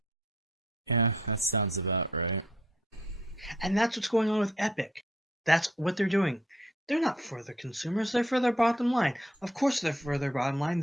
Yeah, that sounds about right. And that's what's going on with Epic. That's what they're doing. They're not for their consumers, they're for their bottom line. Of course they're for their bottom line.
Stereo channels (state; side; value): normal; both; correlation 0.66